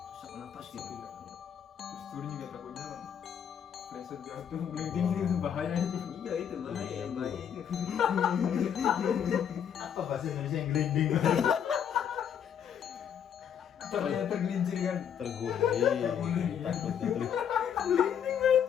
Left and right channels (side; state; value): right; quieter; 8.5 dB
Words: Susah nafas gitu. Iya. Terus turun juga takutnya kan pleset jatuh paling tinggi kan bahaya aja. Iya itu bahaya, bahaya itu. Apa bahasa Indonesia yang gelinding? Caranya tergelincir kan. Terguling. Takut itu.